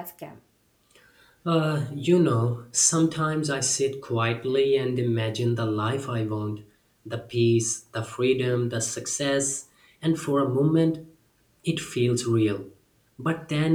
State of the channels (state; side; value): identical; both; correlation 1.00